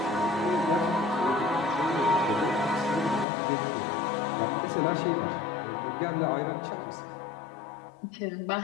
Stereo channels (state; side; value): drops out; right; at 3.2 s